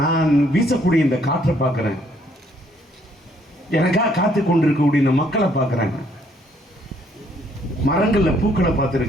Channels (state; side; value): normal; both; correlation 0.67